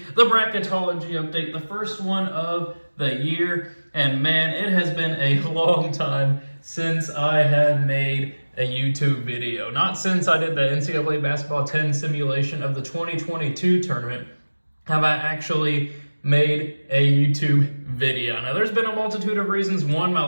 the Bracketology update, the first one of the year. And man, it has been a long time since I have made a YouTube video. Not since I did the NCAA Basketball 10 simulation of the 2022 tournament have I actually made a YouTube video. Now, there's been a multitude of reasons. One, my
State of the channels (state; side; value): inverted; both; correlation -1.00